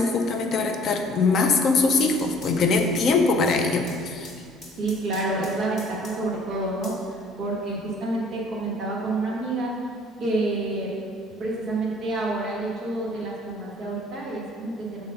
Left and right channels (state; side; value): normal; both; correlation 0.55